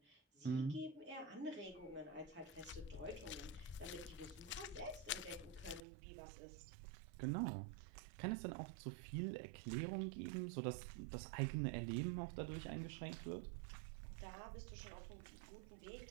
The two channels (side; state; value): left; drops out; at 5.8 s